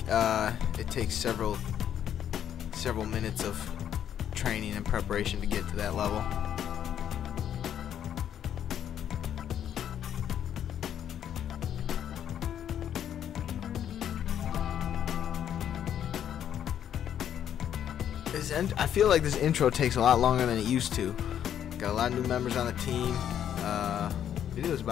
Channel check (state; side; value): quieter; right; 9.7 dB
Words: It takes several minutes of training and preparation to get to that level. I feel like this intro takes a lot longer than it used to. Got a lot of new members on the team. Video is